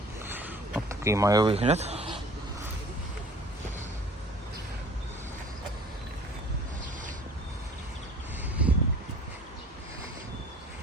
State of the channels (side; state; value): both; normal; correlation 0.48